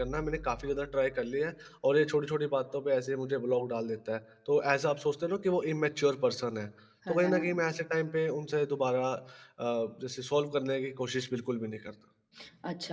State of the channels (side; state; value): both; identical; correlation 1.00